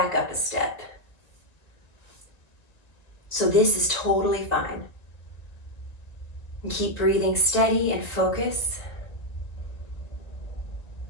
up a step. So this is totally fine. And keep breathing steady and focus.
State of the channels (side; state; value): right; late; 1.9 ms